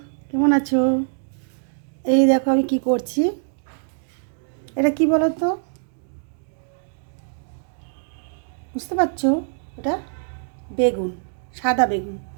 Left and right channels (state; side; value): silent; left; digital silence